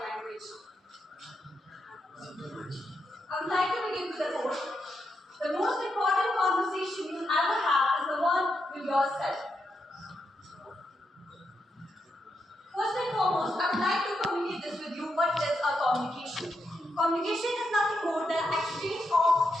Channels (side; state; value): both; normal; correlation 0.84